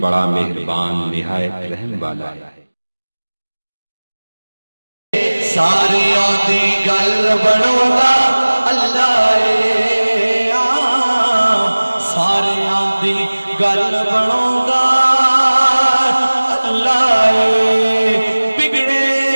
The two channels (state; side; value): inverted; both; correlation -1.00